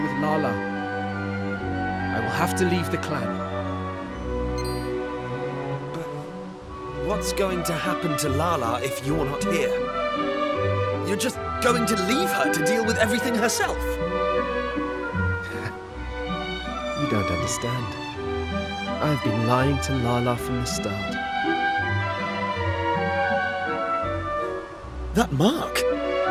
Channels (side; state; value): both; identical; correlation 1.00